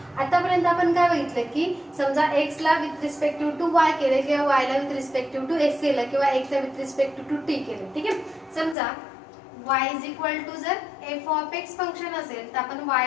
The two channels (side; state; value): right; drops out; at 8.8 s